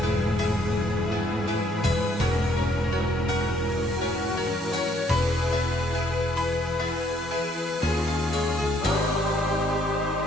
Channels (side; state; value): both; normal; correlation 0.66